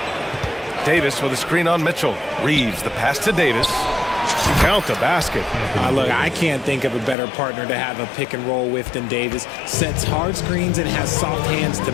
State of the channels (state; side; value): drops out; right; at 7.2 s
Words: Davis with a screen on Mitchell. Reeves, the pass to Davis. Count the basket. Look, I can't think of a better partner to have a pick and roll with than Davis. Sets hard screens and has soft hands to